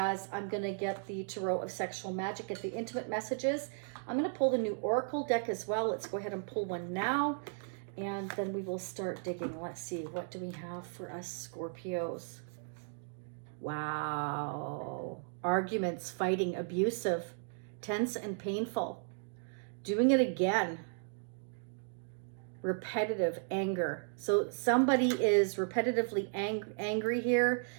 I'm going to get the Tarot of Sexual Magic at the intimate messages. I'm going to pull the new Oracle deck as well. Let's go ahead and pull one now, and then we will start digging. Let's see, what do we have for us Scorpios? Wow. Arguments, fighting, abusive, tense and painful. Doing it again. Repetitive anger. So somebody is repetitively angry here.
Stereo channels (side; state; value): left; silent; digital silence